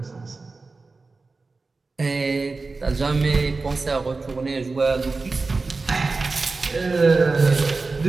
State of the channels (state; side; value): quieter; left; 3.8 dB